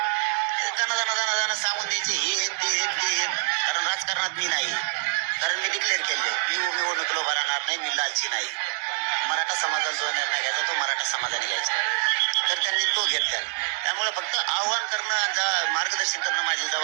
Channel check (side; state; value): left; silent; 56 dB below the other